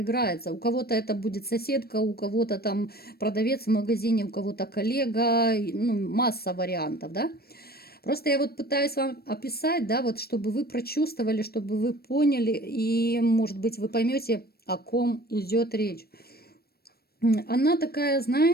У кого-то это будет соседка, у кого-то там продавец в магазине, у кого-то коллега, ну, масса вариантов, да. Просто я вот пытаюсь вам описать, да, вот чтобы вы прочувствовали, чтобы вы поняли, и, может быть, вы поймете, о ком идет речь. Она такая,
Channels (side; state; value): right; late; 0.45 ms